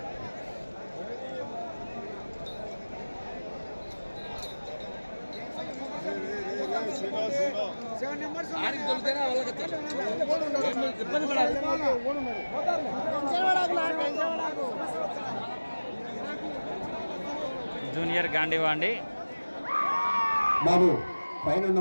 జూనియర్ గాంధీవా అండి. బాబు పైన ఉన్న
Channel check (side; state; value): both; inverted; correlation -1.00